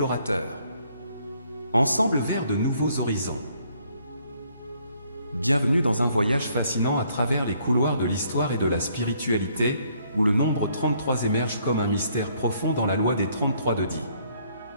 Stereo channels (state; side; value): inverted; both; correlation -0.67